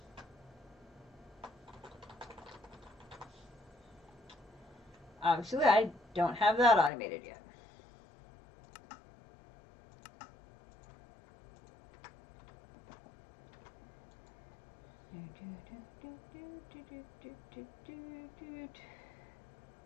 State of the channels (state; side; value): drops out; right; at 6.9 s